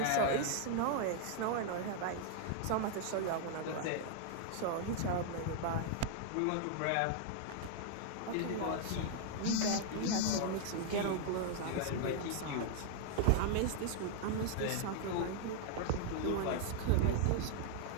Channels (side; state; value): both; different; correlation 0.00